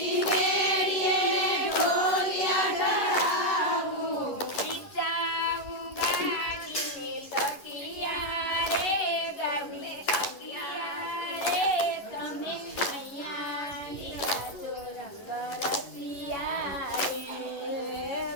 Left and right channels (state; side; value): late; right; 11 ms